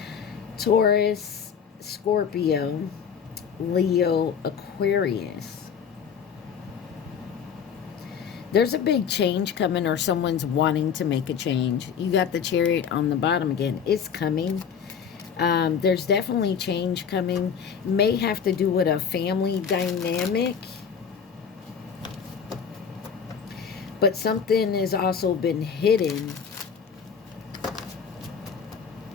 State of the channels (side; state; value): right; quieter; 7.1 dB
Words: Taurus, Scorpio, Leo, Aquarius. There's a big change coming, or someone's wanting to make a change. You got the Chariot on the bottom again. It's coming. There's definitely change coming. May have to do with a family dynamic. But something has also been hidden.